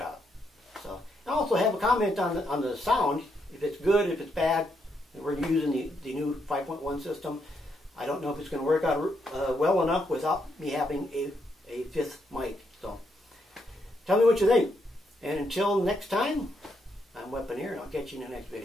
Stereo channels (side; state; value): both; normal; correlation 0.78